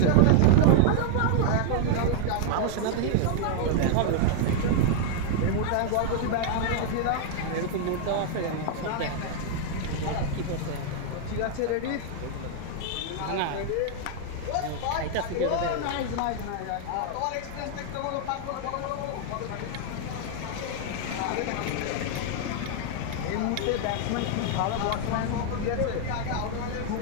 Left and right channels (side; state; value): both; different; correlation -0.01